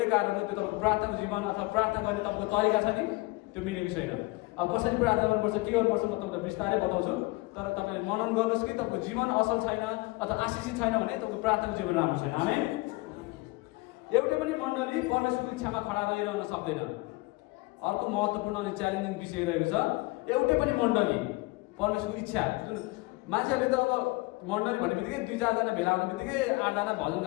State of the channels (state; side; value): quieter; right; 23.4 dB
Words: कारण हो, त्यो तपाईँको प्रार्थनाको जीवन अथवा प्रार्थना गर्ने तपाईँको तरिका छ नि त्यो मिलेको छैन। अब कसरी प्रार्थना गर्नुपर्छ, के गर्नुपर्छ म तपाईँलाई बिस्तारै बताउँछु, तर तपाईँले मनन गर्नुहोस् कि तपाईँको जीवन असल छैन अथवा आशिषित छैन भने तपाईँको प्रार्थनाको जीवन राम्रो छैन। आमेन। एउटै पनि मण्डली परमेश्वरको इच्छामा खडा रहिरहन सक्दैन। अर्को महत्त्वपूर्ण अनि च्यालेन्जिङ विषय रहेको छ, एउटै पनि मण्डली परमेश्वरको इच्छा, जुन मान्छेहरूले त अब मण्डली भन्ने बित्तिकै 2-4 जना भेला हुने बित्तिकै 8 जना भजन